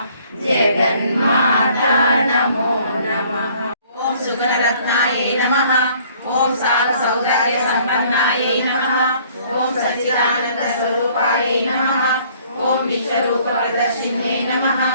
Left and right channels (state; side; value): inverted; both; correlation -0.58